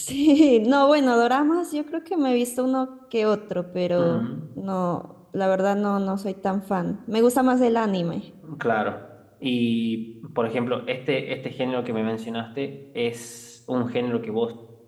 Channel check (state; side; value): identical; both; correlation 1.00